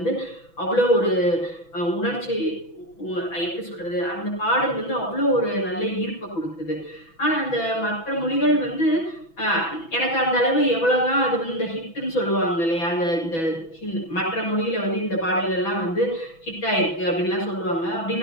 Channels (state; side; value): late; right; 6.0 ms